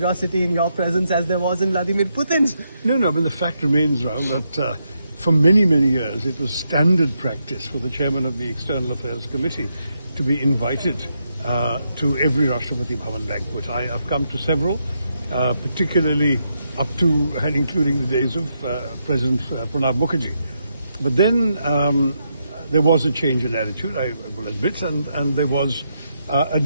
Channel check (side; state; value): both; inverted; correlation -0.81